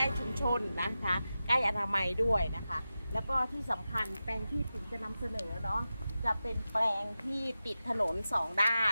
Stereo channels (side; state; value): both; inverted; correlation -0.93